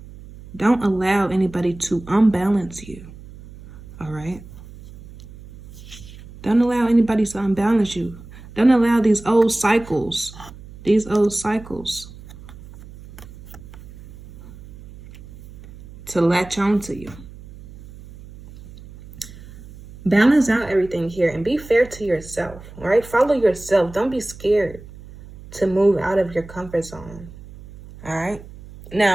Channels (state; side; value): noise; right; hum, 18 dB below the sound